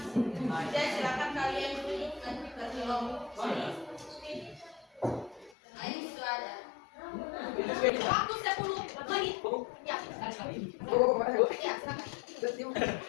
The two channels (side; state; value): right; drops out; at 5.5 s